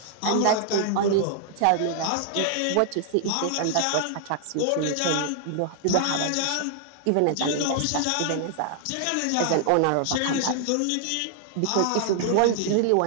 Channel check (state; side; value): different; both; correlation -0.01